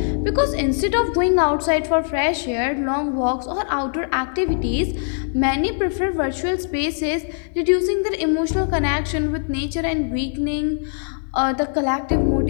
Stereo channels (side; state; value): right; silent; digital silence